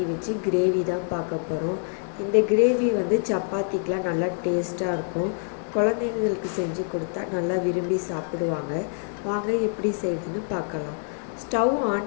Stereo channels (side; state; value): right; silent; 61 dB below the other